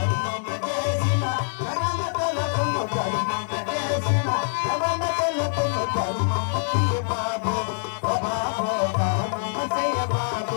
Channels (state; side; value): silent; right; digital silence